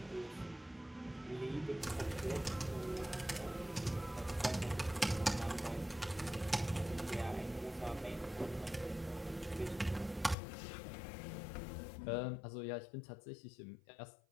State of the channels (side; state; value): right; drops out; at 10.4 s